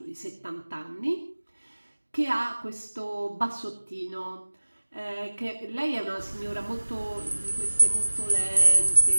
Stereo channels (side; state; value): both; inverted; correlation -1.00